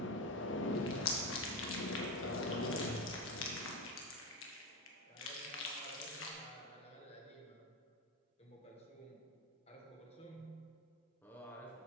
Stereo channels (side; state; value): both; normal; correlation 0.17